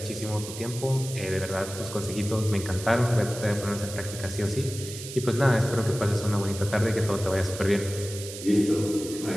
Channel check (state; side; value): noise; right; hiss, 11 dB below the sound